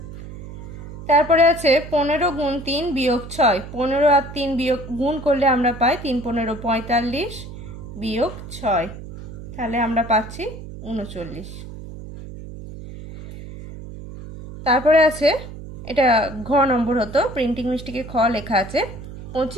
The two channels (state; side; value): noise; right; hum, 12 dB below the sound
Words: তারপরে আছে 15 গুণ 3 বিয়োগ 6, 15 আর 3 বিয়োগ গুণ করলে আমরা পাই 3 15 45 বিয়োগ 6, তাহলে আমরা পাচ্ছি 39। তারপরে আছে, এটা ঘ নম্বর হতো, প্রিন্টিং মিস্টেকে খ লেখা আছে